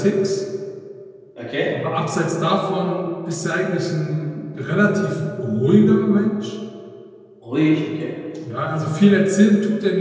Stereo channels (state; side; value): identical; both; correlation 1.00